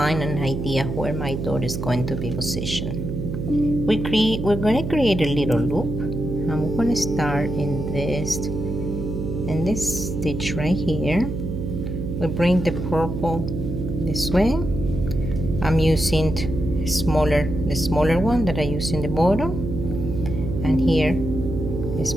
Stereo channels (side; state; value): right; noise; hum, 4 dB below the sound